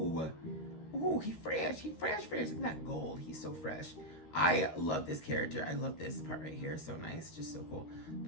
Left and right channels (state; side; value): late; right; 13 ms